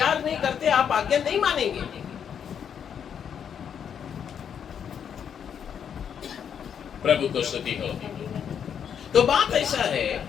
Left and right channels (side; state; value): right; quieter; 8.0 dB